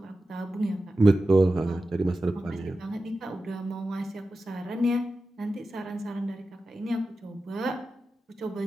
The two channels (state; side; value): normal; both; correlation 0.93